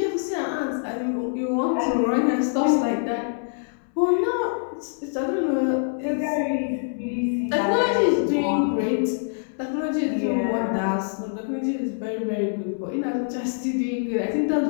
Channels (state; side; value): silent; right; 62 dB below the other